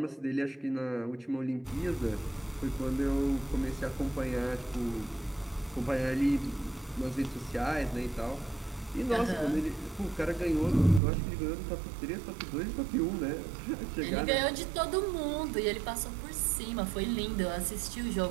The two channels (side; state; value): left; drops out; at 11.0 s